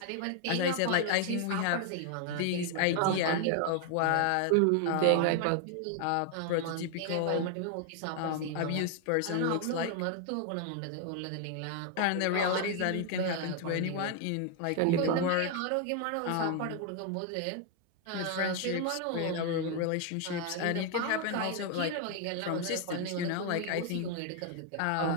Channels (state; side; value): different; both; correlation 0.00